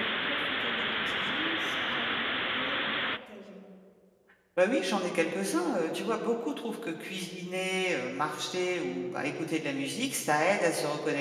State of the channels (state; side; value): identical; both; correlation 1.00